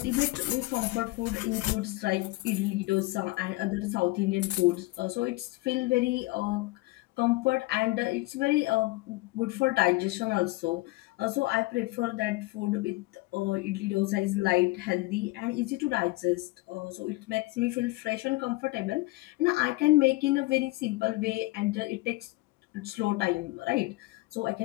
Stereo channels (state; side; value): quieter; right; 21.3 dB